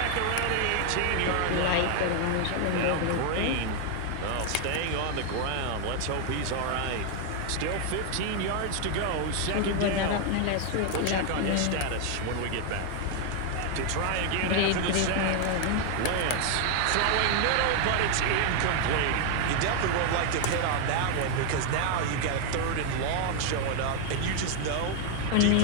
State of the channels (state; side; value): different; both; correlation 0.00